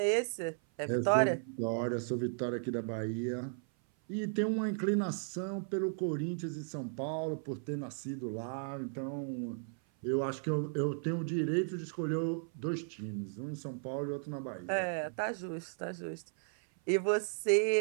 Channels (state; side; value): silent; left; 54 dB below the other